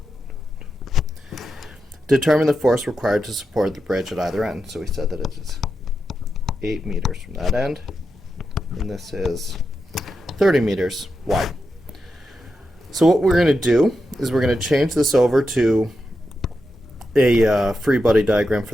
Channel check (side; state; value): both; normal; correlation 0.87